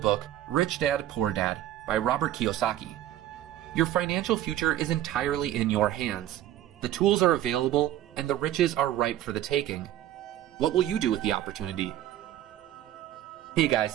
Rich Dad, Poor Dad by Robert Kiyosaki. Your financial future is entirely in your hands. The tools are available, and the riches are ripe for the taking. What will you do with the opportunity? Hey guys,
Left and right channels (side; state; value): left; quieter; 12.8 dB